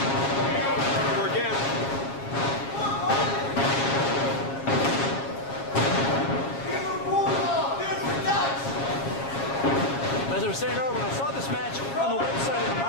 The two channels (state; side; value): late; right; 7.3 ms